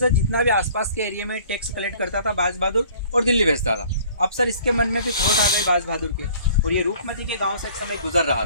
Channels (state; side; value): inverted; both; correlation -0.53